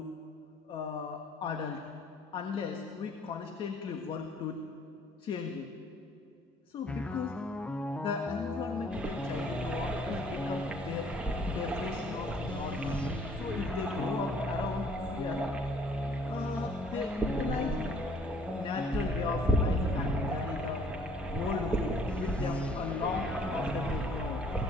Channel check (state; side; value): normal; both; correlation 0.58